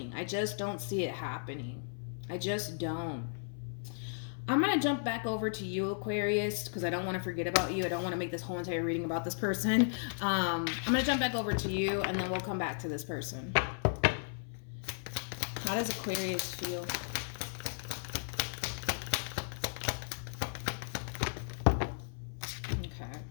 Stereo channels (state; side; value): silent; right; 54 dB below the other